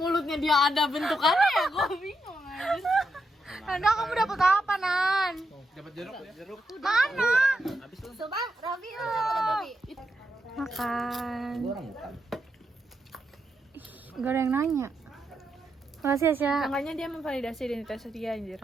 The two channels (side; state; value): both; normal; correlation 0.83